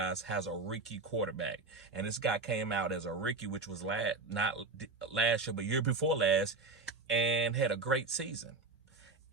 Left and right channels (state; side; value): quieter; left; 3.8 dB